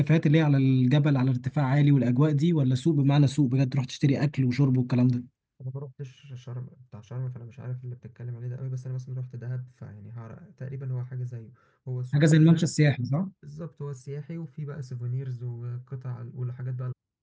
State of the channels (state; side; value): identical; both; correlation 1.00